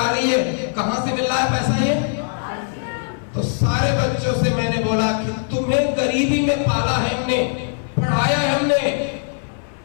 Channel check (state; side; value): silent; right; 61 dB below the other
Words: रही है। कहां से मिल रहा है पैसा ये? तो सारे बच्चों से मैंने बोला कि तुम्हें गरीबी में पाला है हमने, पढ़ाया है हमने।